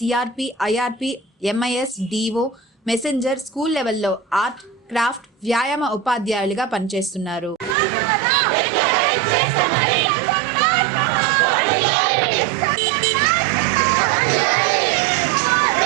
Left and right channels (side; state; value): left; drops out; at 7.8 s